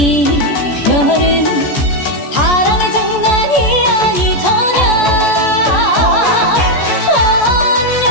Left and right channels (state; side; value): late; right; 14 ms